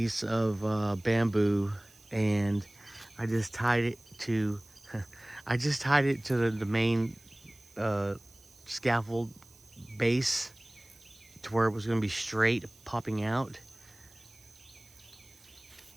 of bamboo, and I just tied it to the main scaffold base to where it was going to be straight popping out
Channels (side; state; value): right; noise; hiss, 26 dB below the sound